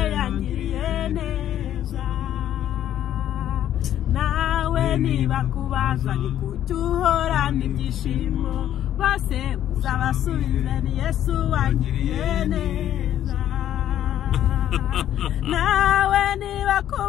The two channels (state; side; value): quieter; right; 11.3 dB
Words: yangiriye neza nawe niba kubaza ni kuki uhorana ibyishimo bose uzabasubize ni Yesu wangiriye neza nawe niba